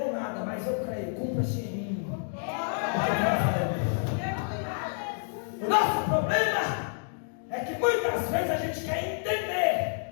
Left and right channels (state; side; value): silent; right; digital silence